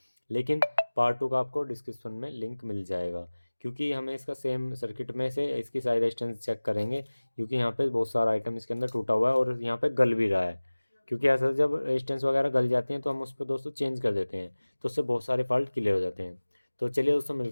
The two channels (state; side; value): inverted; both; correlation -1.00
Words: लेकिन पार्ट 2 का आपको डिस्क्रिप्शन में लिंक मिल जाएगा। क्योंकि हमें इसका सेम सर्किट में से इसकी सारी रेजिस्टेंस चेक करेंगे, क्योंकि यहाँ पे बहुत सारा आइटम इसके अंदर टूटा हुआ है और यहाँ पे गल भी रहा है। क्योंकि ऐसा जब रेजिस्टेंस वगैरह गल जाती हैं तो हम उस पर दोस्तों चेंज कर देते हैं, तो उससे बहुत सारे फॉल्ट क्लियर हो जाते हैं। तो चलिए दोस्तों